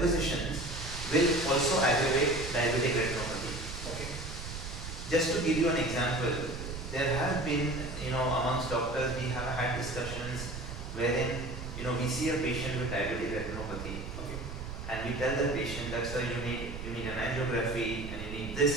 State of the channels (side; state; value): right; noise; rumble, 8 dB below the sound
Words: will also aggravate diabetic retinopathy. Just to give you an example, there have been, amongst doctors, we have had discussions wherein, we see a patient with diabetic retinopathy. And we tell the patient that, sir, you need an angiography, and you need this,